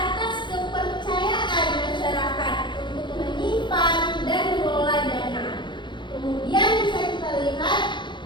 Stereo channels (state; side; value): late; right; 0.23 ms